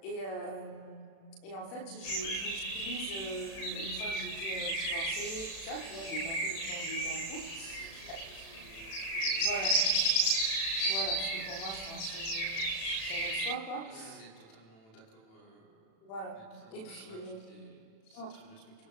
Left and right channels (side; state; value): right; late; 36 ms